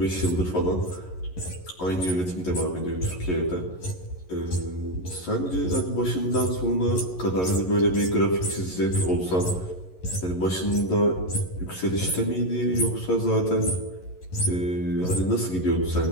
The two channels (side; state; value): right; late; 11 ms